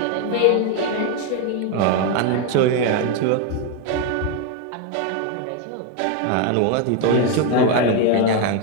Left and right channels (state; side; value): different; both; correlation 0.01